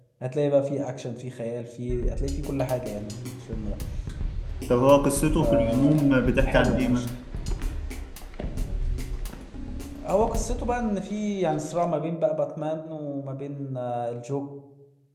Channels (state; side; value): identical; both; correlation 1.00